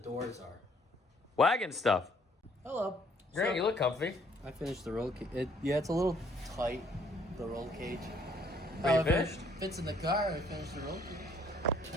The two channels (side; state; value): both; normal; correlation 0.63